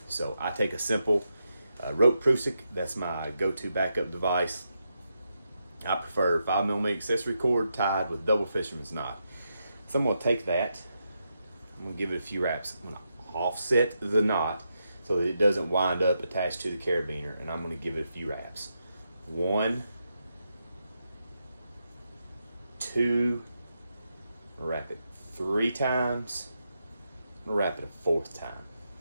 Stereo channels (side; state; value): both; inverted; correlation -0.84